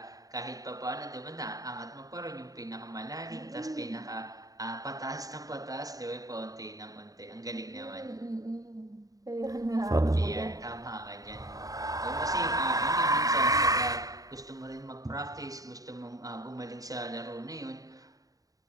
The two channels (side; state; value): left; late; 0.17 ms